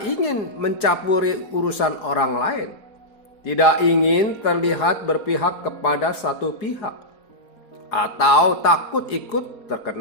ingin mencampuri urusan orang lain, tidak ingin terlihat berpihak kepada satu pihak, atau takut ikut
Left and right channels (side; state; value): right; late; 4.8 ms